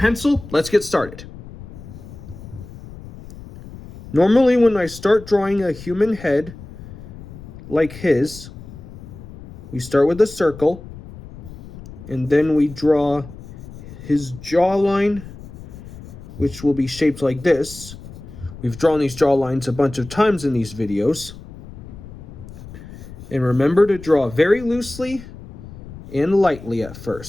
let's get started. Normally when I start drawing a human head like his, we start with a circle, and then we draw his jawline, which will be shaped like this. We've drawn these jawlines a bunch of times in these videos. And remember to draw very loosely and lightly at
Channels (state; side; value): noise; left; rumble, 15 dB below the sound